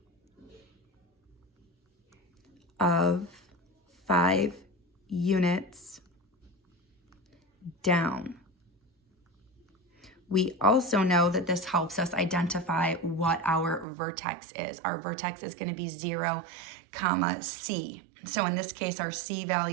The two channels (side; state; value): left; drops out; at 13.9 s